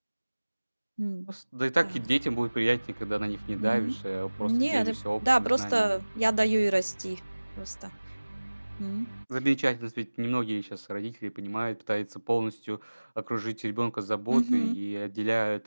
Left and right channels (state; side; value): inverted; both; correlation -1.00